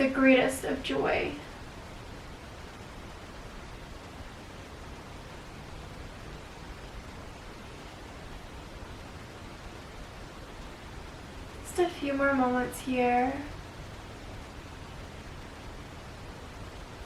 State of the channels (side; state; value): both; identical; correlation 1.00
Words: greatest of joy. Just a few more moments here.